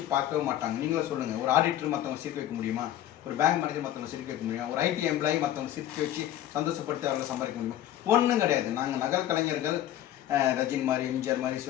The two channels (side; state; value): right; quieter; 12.4 dB